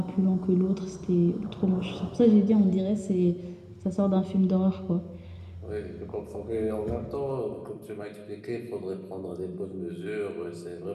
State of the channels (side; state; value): both; identical; correlation 1.00